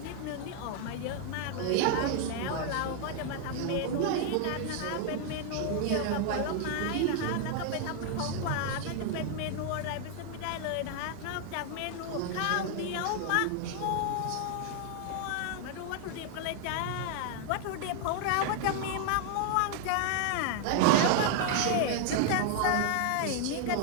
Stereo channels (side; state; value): both; different; correlation 0.00